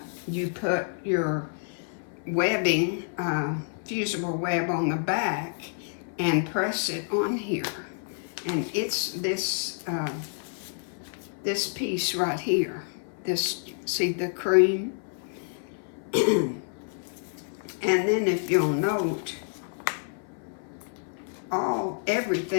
you put your webbing, fusible web on the back and press it on here. And it's this this piece right here. This, see the cream? And then if you'll note,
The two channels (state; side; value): silent; right; 59 dB below the other